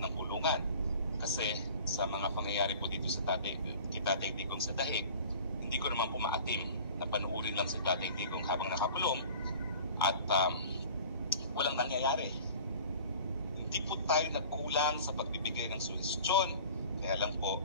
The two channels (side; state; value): both; inverted; correlation -0.43